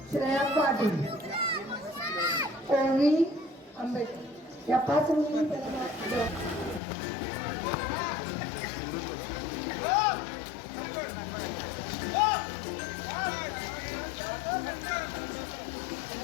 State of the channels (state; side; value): drops out; right; at 6.8 s